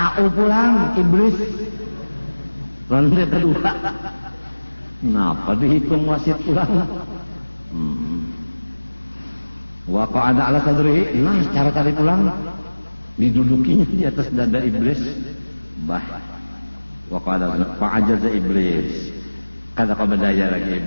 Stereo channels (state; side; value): inverted; both; correlation -1.00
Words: pulang iblis. Ronde kedua. Kenapa dihitung wasit pulang? Wa qa'ada ala sadrihi, nah cara tadi pulang didudukinya di atas dada iblis. Wa qa'ada fa'ajaza iblis. Kada kau berdaya lagi